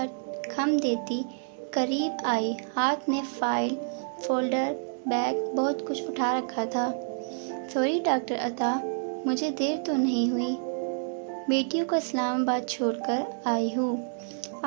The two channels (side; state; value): left; silent; digital silence